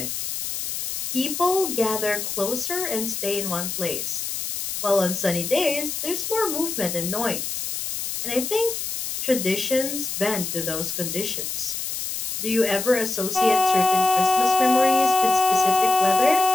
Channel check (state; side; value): noise; left; hiss, 4 dB below the sound